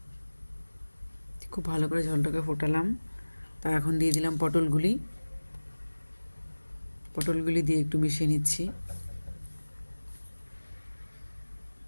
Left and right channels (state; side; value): inverted; both; correlation -1.00